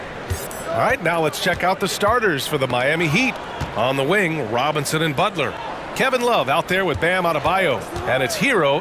All right, now let's check out the starters for the Miami Heat. On the wing, Robinson and Butler. Kevin Love out there with Bam Adebayo. And it's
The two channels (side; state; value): both; identical; correlation 1.00